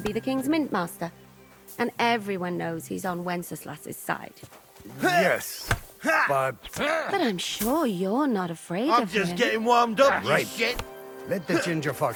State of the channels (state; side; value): identical; both; correlation 1.00